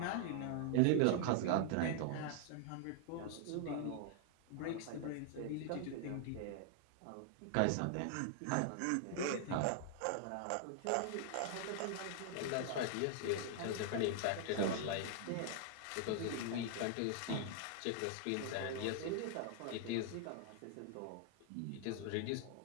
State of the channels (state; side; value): different; both; correlation 0.00